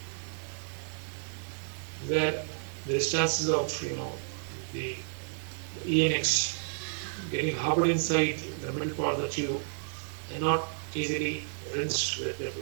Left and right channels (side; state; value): left; silent; 57 dB below the other